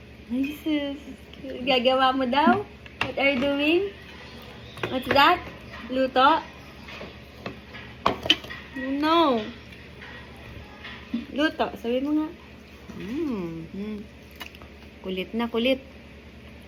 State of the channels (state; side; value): identical; both; correlation 1.00